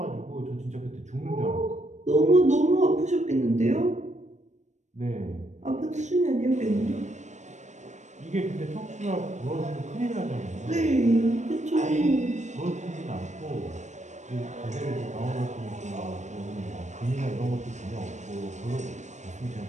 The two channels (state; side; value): late; left; 0.34 ms